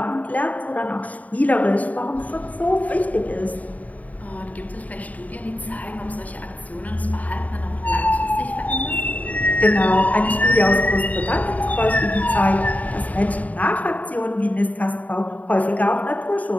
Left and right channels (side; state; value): right; late; 0.073 ms